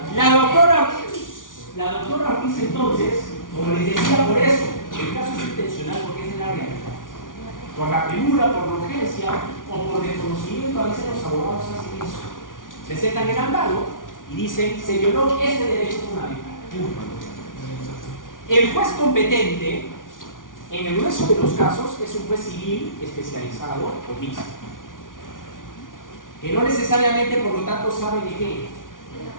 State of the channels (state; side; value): late; right; 0.88 ms